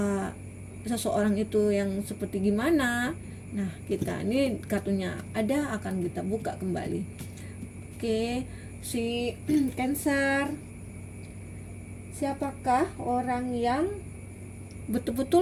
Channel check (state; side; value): identical; both; correlation 1.00